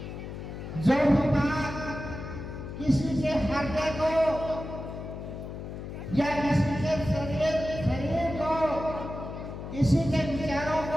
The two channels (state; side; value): noise; left; hum, 9 dB below the sound